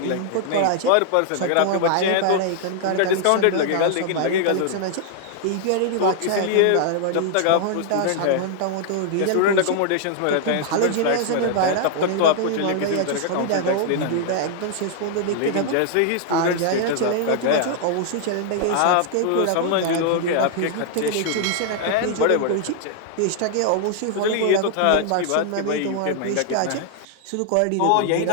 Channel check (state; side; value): different; both; correlation -0.01